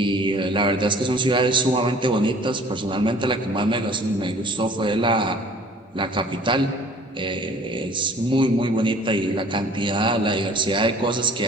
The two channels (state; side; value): normal; both; correlation 0.51